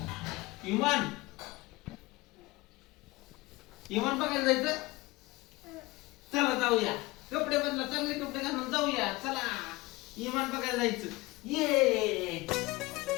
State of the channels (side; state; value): right; quieter; 21.5 dB